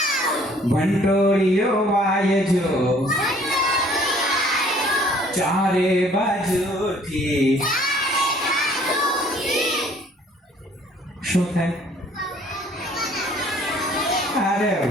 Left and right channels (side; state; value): both; normal; correlation 0.57